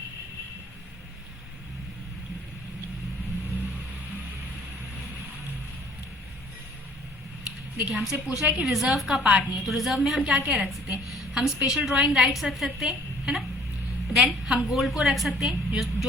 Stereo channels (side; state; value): both; normal; correlation 0.55